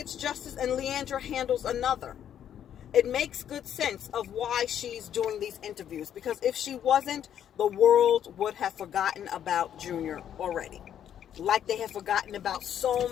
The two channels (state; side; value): quieter; right; 9.8 dB